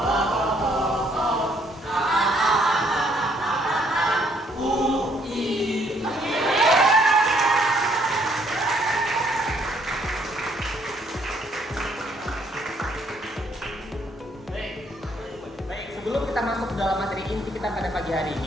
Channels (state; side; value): normal; both; correlation 0.67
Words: Sebelum kita masuk ke dalam materi inti kita pada pagi hari